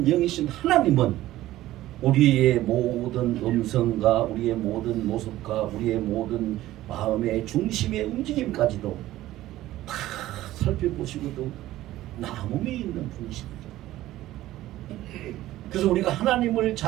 영이신 하나님은 우리의 모든 음성과 우리의 모든 모습과 우리의 모든 마음의 중심의 움직임까지도 다 살펴보시고도 남음이 있는 분이십니다. 그래서 우리가 하나님을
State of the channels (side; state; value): left; quieter; 15.2 dB